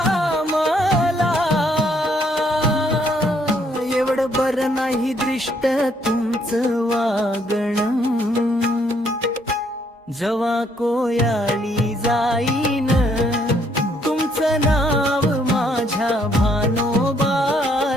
मला. एवढं बरं नाही दृष्ट तुमचं वागणं, जवा कोयाळी जाईन तुमचं नाव माझ्या भानोबा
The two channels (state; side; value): normal; both; correlation 0.69